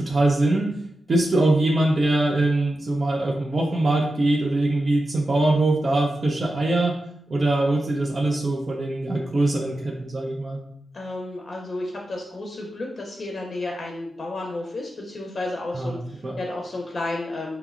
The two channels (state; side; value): normal; both; correlation 0.91